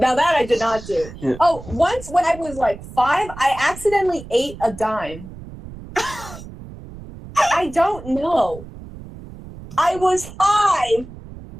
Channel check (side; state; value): right; noise; rumble, 15 dB below the sound